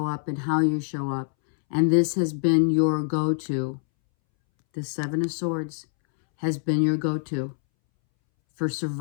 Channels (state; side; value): silent; right; 62 dB below the other